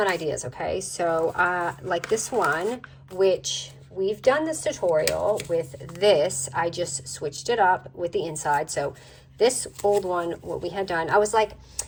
ideas, okay? So like this one, which we've done this tutorial with this, I just switched it up with the inside. So this old one, what we had done, I was like,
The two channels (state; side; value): identical; both; correlation 1.00